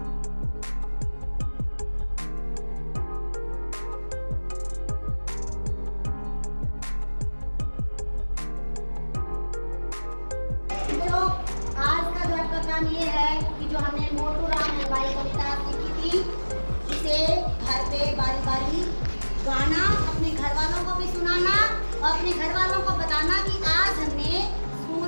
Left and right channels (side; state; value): both; inverted; correlation -1.00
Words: काम ये है कि जो हमने मोटू राम हलवाई कविता सीखी थी, इसे घर पे बारी बारी गाना, अपने घर वालों को भी सुनाना और अपने घर वालों को बताना कि आज हमने